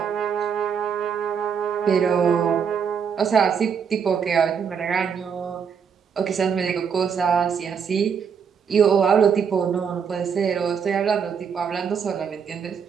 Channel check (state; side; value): quieter; left; 6.9 dB